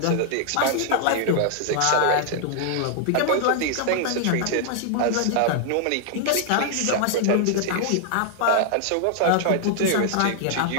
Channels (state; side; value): different; both; correlation 0.00